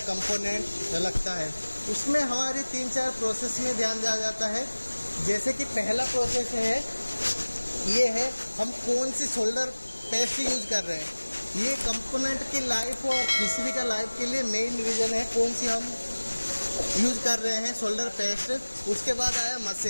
कंपोनेंट लगता है, उसमें हमारी 3-4 प्रोसेस में ध्यान दिया जाता है। जैसे कि पहला प्रोसेस है, ये है हम कौन सी सोल्डर पेस्ट यूज़ कर रहे हैं। ये कंपोनेंट की लाइफ और पीसीबी का लाइफ के लिए मेन रीज़न है कौन सी हम यूज कर रहे हैं सोल्डर पेस्ट। उसके बाद आया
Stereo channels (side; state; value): both; inverted; correlation -1.00